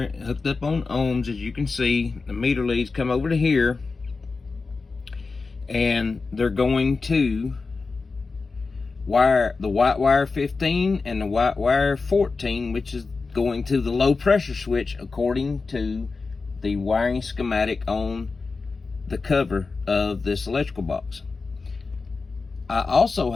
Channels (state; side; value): quieter; right; 4.2 dB